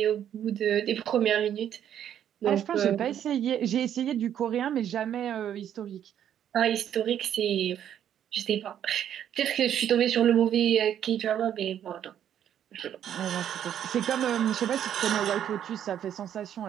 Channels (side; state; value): left; quieter; 10.0 dB